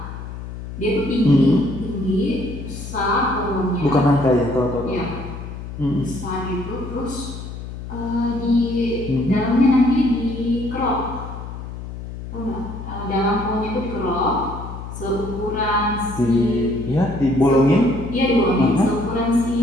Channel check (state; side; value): noise; left; hum, 10 dB below the sound